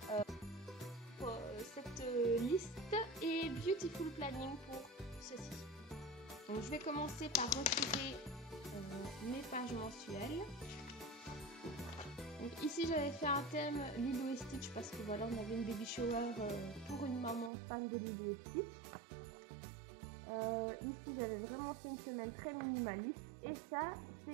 cette liste et Beautiful Planning pour ceci. Donc je vais commencer par retirer mes pages mensuelles. Donc ici j'avais fait un thème Lilo et Stitch parce que voilà, on avait une baby shower pour une maman fan de Lilo et Stitch. Ici j'avais vraiment fait une semaine très minimaliste et ça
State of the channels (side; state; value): left; drops out; at 17.5 s